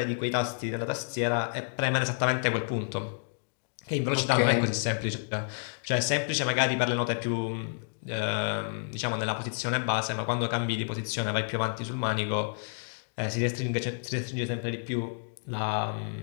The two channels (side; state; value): right; silent; digital silence